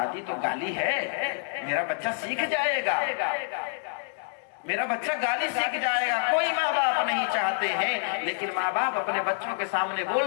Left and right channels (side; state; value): right; silent; digital silence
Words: تو گالی ہے، میرا بچہ سیکھ جائے گا، میرا بچہ گالی سیکھ جائے گا۔ کوئی ماں باپ نہیں چاہتے ہیں، لیکن ماں باپ اپنے بچوں کے سامنے